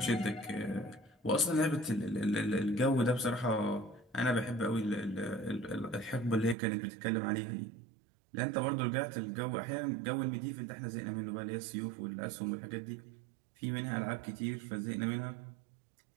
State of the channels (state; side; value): drops out; left; at 6.6 s